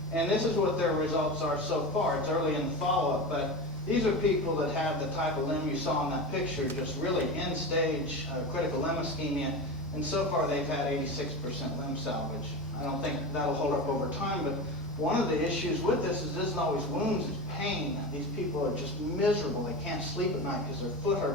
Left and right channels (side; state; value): both; normal; correlation 0.25